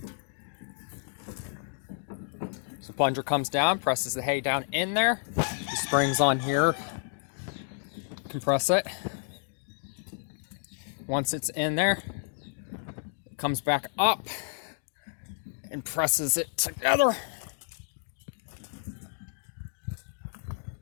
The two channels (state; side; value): silent; right; digital silence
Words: So plunger comes down, presses the hay down in there. The springs on here compress it. Once it's in there, it comes back up and presses it together.